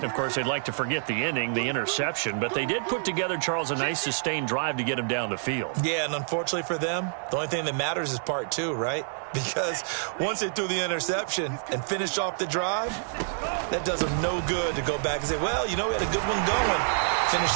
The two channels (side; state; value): left; silent; 60 dB below the other